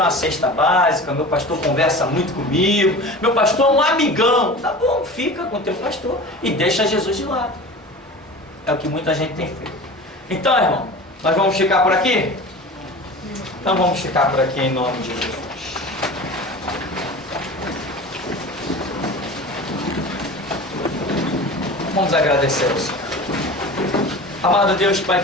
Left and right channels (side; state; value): both; normal; correlation 0.35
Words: uma cesta básica, meu pastor conversa muito comigo, meu pastor é um amigão. Tá bom, fica com o teu pastor e deixa Jesus de lado. É o que muita gente tem feito. Então, irmão, nós vamos ficar por aqui? Então vamos ficar por aqui em nome de Jesus. Vamos agradecer ao Senhor. Amado Deus, Pai